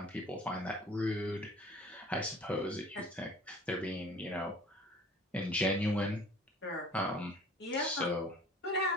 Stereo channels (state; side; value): normal; both; correlation 0.47